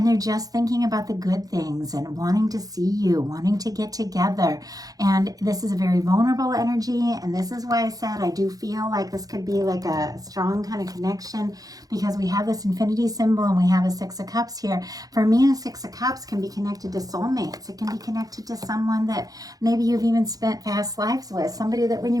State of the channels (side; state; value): left; late; 0.18 ms